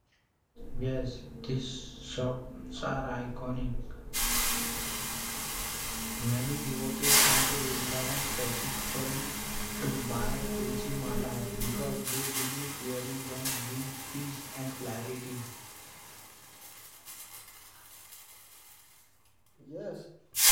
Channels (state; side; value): identical; both; correlation 1.00